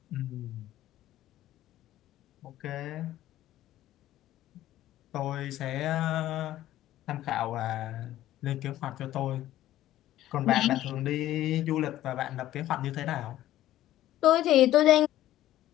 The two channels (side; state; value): right; quieter; 13.9 dB